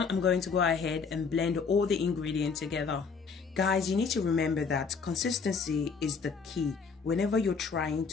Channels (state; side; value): quieter; right; 5.3 dB